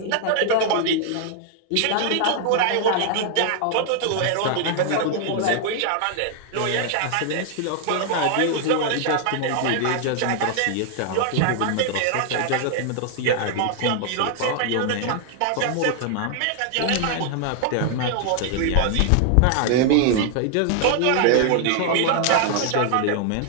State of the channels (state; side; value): different; both; correlation 0.00